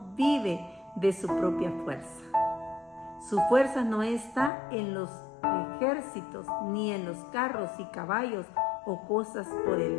vive de su propia fuerza. Su fuerza no está en los ejércitos, ni en los carros y caballos o cosas por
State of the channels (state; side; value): drops out; right; at 4.5 s